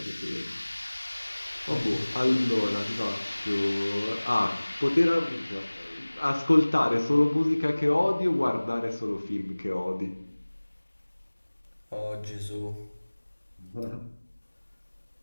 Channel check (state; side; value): inverted; both; correlation -1.00